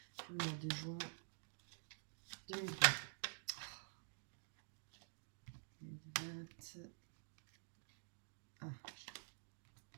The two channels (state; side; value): silent; left; digital silence